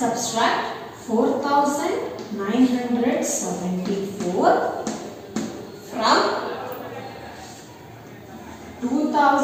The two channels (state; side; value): identical; both; correlation 1.00